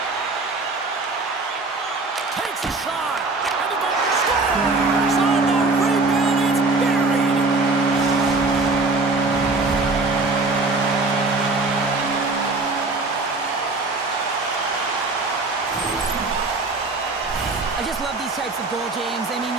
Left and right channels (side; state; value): left; quieter; 3.5 dB